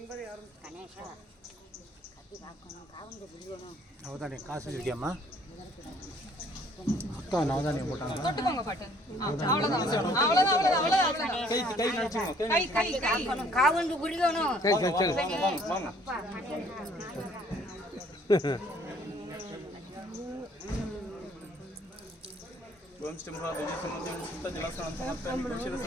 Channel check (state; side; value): normal; both; correlation 0.60